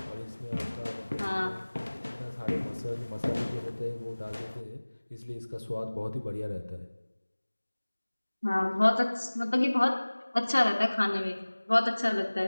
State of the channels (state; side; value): inverted; both; correlation -1.00